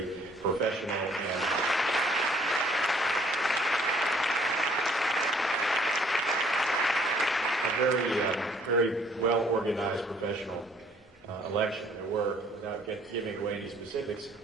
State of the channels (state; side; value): normal; both; correlation 0.61